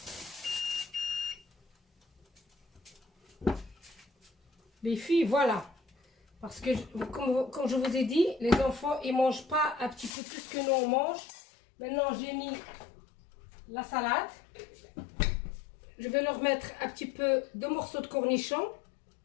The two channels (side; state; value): right; drops out; at 10.2 s